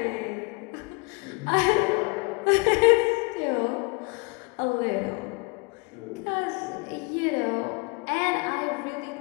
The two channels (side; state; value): right; quieter; 30.2 dB